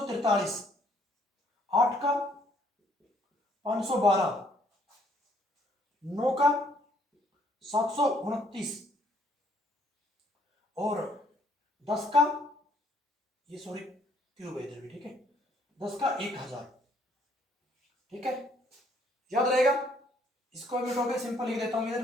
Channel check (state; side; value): normal; both; correlation 0.65